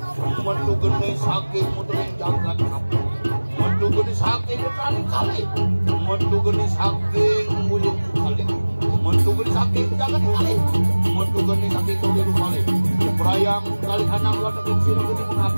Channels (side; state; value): both; inverted; correlation -1.00